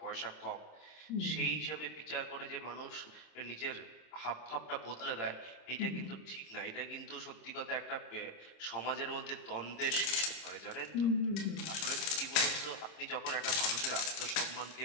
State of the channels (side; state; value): right; late; 26 ms